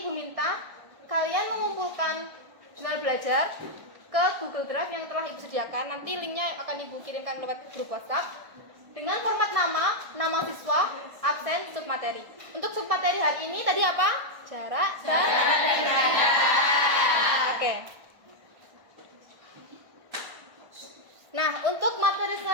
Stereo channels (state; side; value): late; left; 1.4 ms